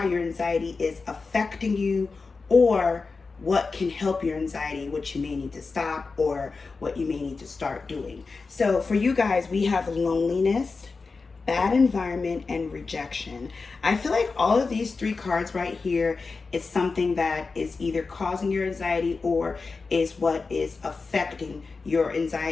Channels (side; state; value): right; quieter; 4.3 dB